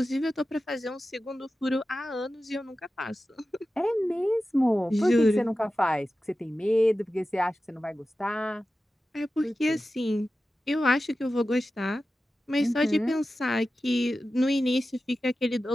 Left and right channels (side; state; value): both; normal; correlation 0.94